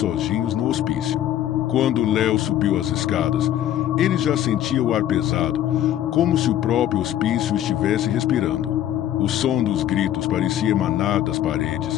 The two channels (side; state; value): right; quieter; 11.8 dB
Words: no hospício. Quando Léo subiu as escadas, ele já sentia o ar pesado, como se o próprio hospício estivesse respirando. O som dos gritos parecia emanar das